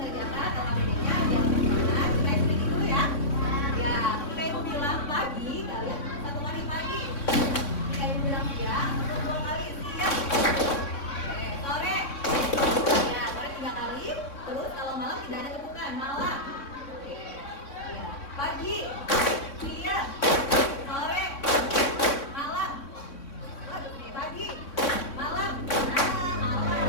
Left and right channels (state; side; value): late; right; 3.6 ms